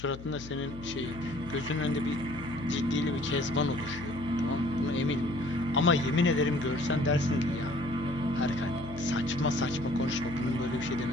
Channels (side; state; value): left; noise; hum, 14 dB below the sound